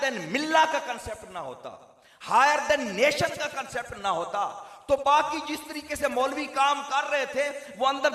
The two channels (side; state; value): both; identical; correlation 1.00